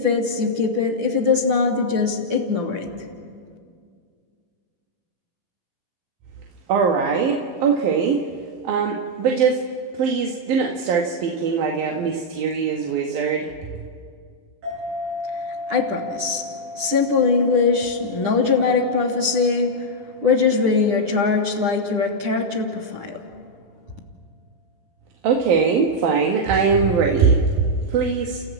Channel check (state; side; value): late; left; 9.9 ms